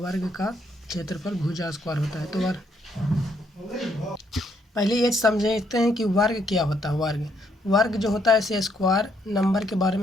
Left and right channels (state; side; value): normal; both; correlation 0.72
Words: का क्षेत्रफल भुजा स्क्वायर होता है। तो पहले ये समझते हैं कि वर्ग क्या होता है। वर्ग जो होता है ऐसे स्क्वायर नंबर के बारे